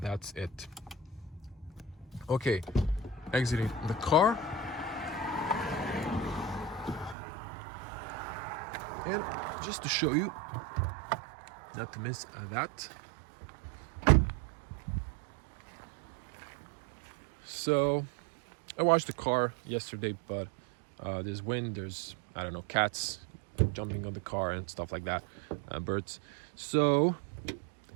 it. Okay, exiting the car. And just to show you, not to miss that. So I washed the car yesterday, but there's wind, there's, I don't know, cats jumping on the car and stuff like that, birds. So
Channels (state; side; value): drops out; left; at 7.2 s